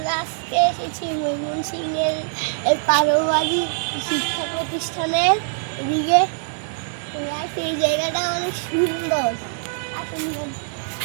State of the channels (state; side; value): silent; left; 64 dB below the other